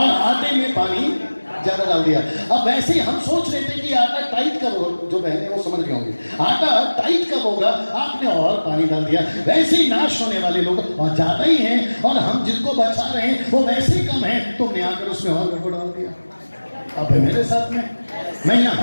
आटे में पानी ज्यादा डाल दिया। अब वैसे ही हम सोच रहे थे कि आटा टाइट कब होगा, जो बहने वो समझ गए होंगे, आटा टाइट कब होगा, आपने और पानी डाल दिया। वैसे ही नाश होने वाले लोग और ज्यादा ही हैं, और हम जिनको बचा रहे हैं वो वैसे ही कम है, तुमने आकर उसमें और गड़बड़ डाल दिया। अब है मेरे साथ में। मैं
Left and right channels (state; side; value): inverted; both; correlation -1.00